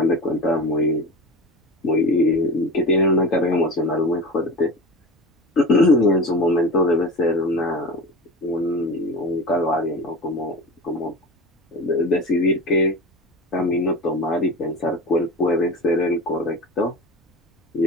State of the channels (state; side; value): normal; both; correlation 0.30